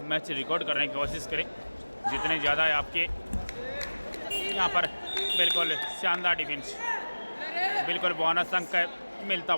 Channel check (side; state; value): both; inverted; correlation -1.00